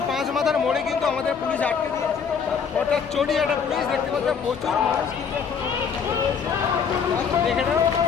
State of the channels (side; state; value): right; quieter; 6.5 dB